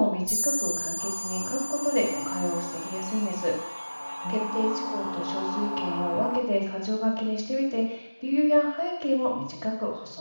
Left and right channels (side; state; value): both; inverted; correlation -1.00